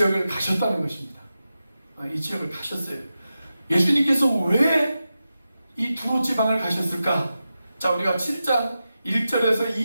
가셨다는 것입니다. 이 지역을 가셨어요. 예수님께서 왜 이 두로 지방을 가셨을까? 자, 우리가 7장 1절에서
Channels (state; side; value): inverted; both; correlation -0.91